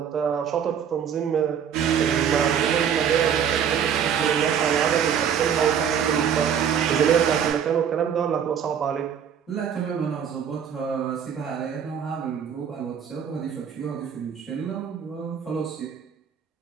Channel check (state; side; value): quieter; left; 8.1 dB